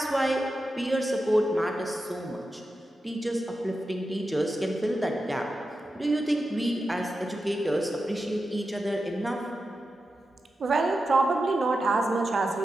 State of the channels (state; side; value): normal; both; correlation 0.90